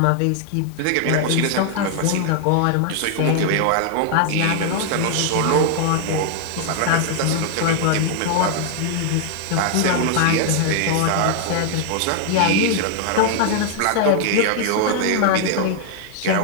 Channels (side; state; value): both; different; correlation 0.00